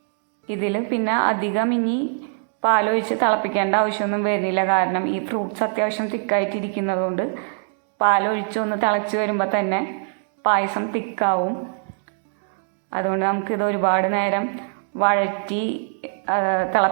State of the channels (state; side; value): silent; left; 64 dB below the other